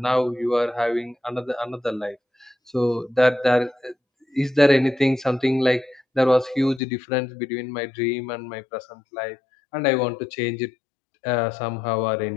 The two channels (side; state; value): right; drops out; at 6.8 s